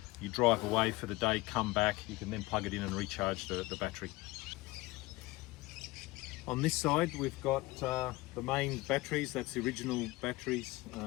you drive away for the day, come back, you can then plug it in and recharge the battery. On this side we've got the main batteries, that's the original batteries,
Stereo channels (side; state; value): right; quieter; 20.8 dB